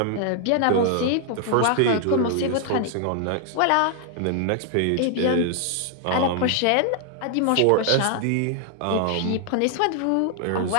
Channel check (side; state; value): both; different; correlation 0.00